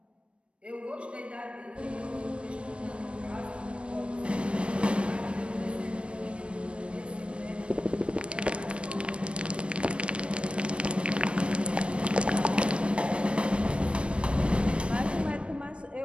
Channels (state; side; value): late; left; 0.059 ms